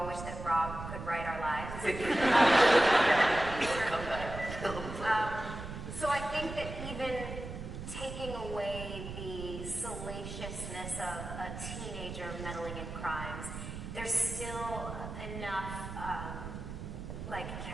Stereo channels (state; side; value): noise; right; rumble, 8 dB below the sound